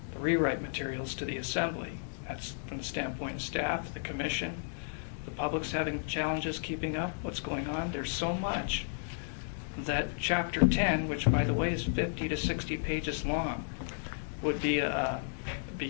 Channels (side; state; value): right; silent; digital silence